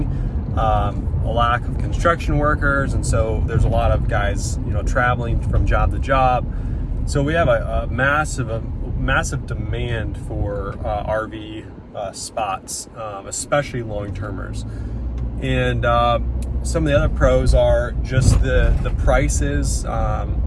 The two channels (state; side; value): identical; both; correlation 1.00